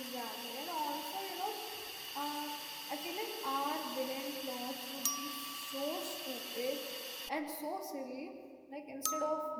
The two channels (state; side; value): identical; both; correlation 1.00